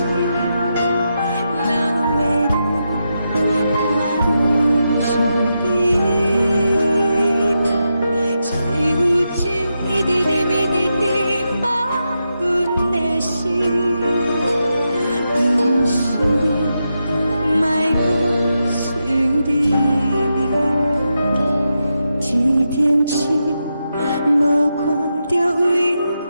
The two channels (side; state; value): both; inverted; correlation -0.86